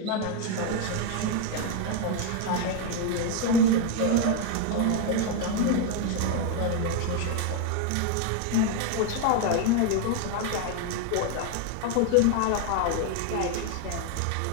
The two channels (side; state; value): both; different; correlation 0.01